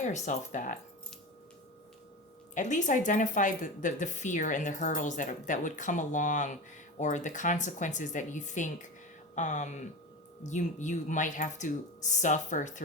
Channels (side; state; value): both; normal; correlation 0.26